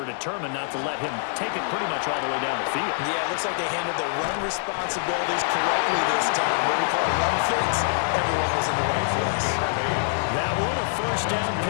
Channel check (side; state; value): right; silent; digital silence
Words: determined not to let him take it pretty much all the way down the field. Yeah, it looks like they handled their run responsibilities correctly this time. What we call run fits, everyone was in the right place. That one, a first down